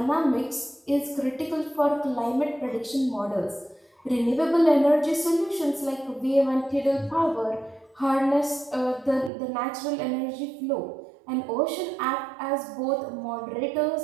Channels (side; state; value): left; drops out; at 9.3 s